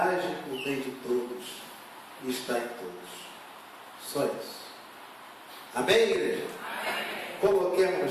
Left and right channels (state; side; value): identical; both; correlation 1.00